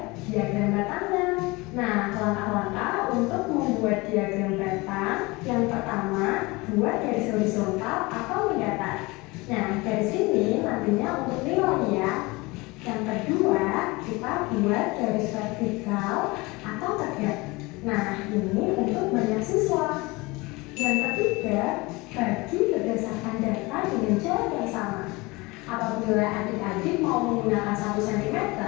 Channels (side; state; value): right; quieter; 23.7 dB